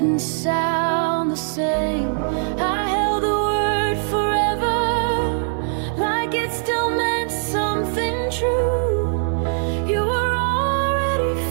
sound the same. I held the word forever, like it still meant something true. You were already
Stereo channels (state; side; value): silent; left; digital silence